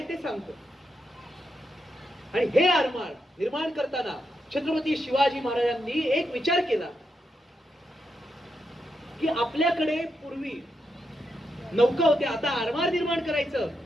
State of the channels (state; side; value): normal; both; correlation 0.84